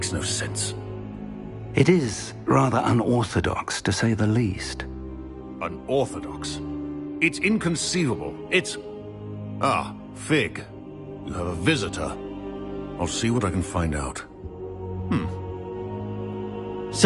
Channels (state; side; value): identical; both; correlation 1.00